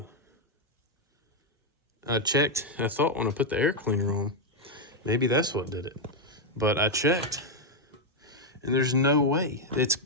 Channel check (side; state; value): both; normal; correlation 0.01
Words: I checked, I thought when I put the air cleaner on, maybe that's what did it. But I checked, and there's no way. It's